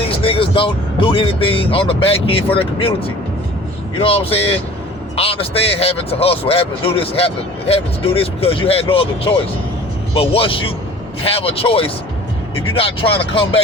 niggas don't do anything on the back end for their community. You know what I'm saying? I understand having to hustle, having to do this, having to do this because you had no other choice. But once you have a choice, if you're not trying to come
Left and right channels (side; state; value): both; normal; correlation 0.46